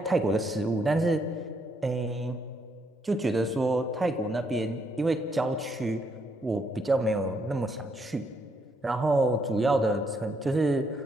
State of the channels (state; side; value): normal; both; correlation 0.74